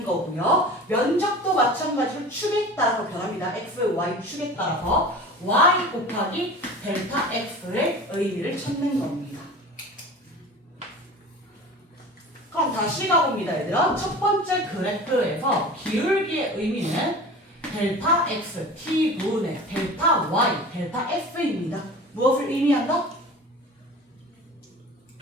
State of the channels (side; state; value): both; normal; correlation 0.37